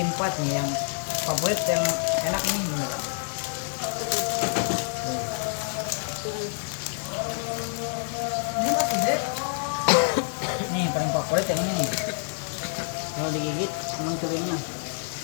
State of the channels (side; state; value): right; silent; 60 dB below the other